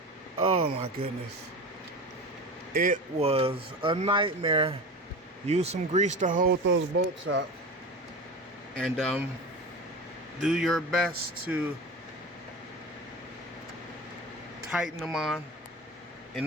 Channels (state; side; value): normal; both; correlation 0.30